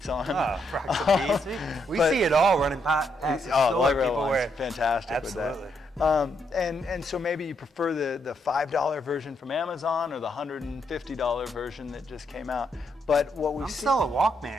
on. Oh, rock some Beats. We see it all running past the store. People wear it. Fantastic. Absolutely. With that. And so maybe you prefer the $5 version from Amazon or the $150 version that just came out. But what we've seen, still a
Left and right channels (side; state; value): both; normal; correlation 0.77